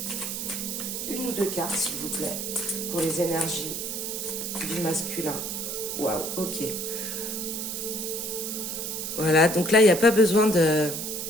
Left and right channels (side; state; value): right; noise; hiss, 4 dB below the sound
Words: une ou deux cartes, s'il vous plaît, pour les énergies du masculin. Waouh, ok. Voilà, donc là, il n'y a pas besoin de